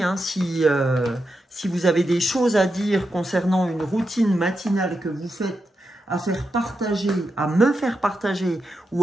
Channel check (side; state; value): both; normal; correlation 0.87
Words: hein, si vous avez des choses à dire concernant une routine matinale que vous faites, à faire partager, à me faire partager